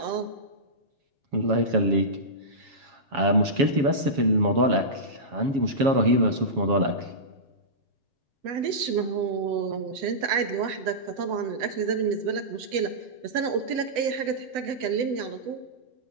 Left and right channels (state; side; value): late; left; 7.3 ms